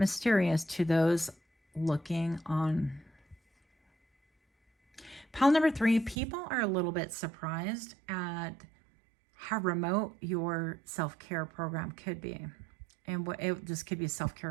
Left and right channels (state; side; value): drops out; left; at 6.2 s